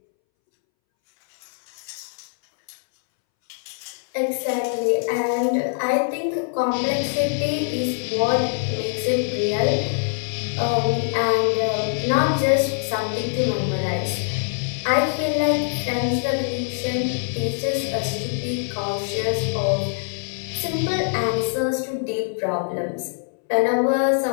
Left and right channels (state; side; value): silent; right; 63 dB below the other